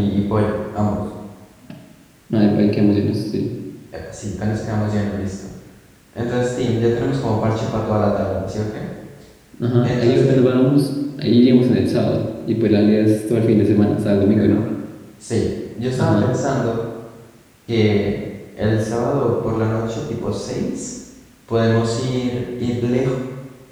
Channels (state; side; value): identical; both; correlation 1.00